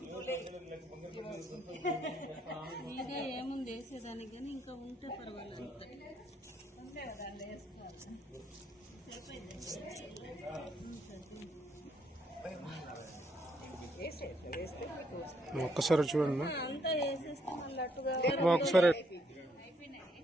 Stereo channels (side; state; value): both; normal; correlation 0.72